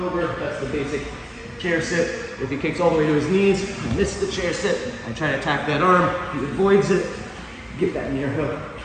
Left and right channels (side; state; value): both; identical; correlation 1.00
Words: over. That's the basic chair sit. If he kicks all the way to his knees, I miss the chair sit. I try to attack that arm, he avoids it, get that near hook.